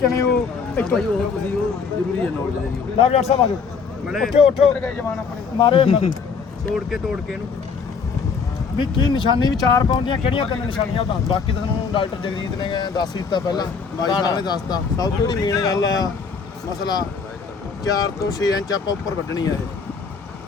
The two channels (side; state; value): right; quieter; 5.5 dB